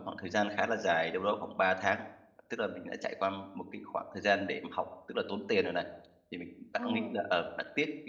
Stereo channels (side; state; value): both; identical; correlation 1.00